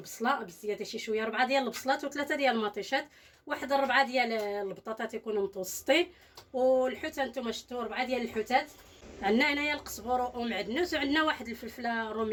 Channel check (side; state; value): both; identical; correlation 1.00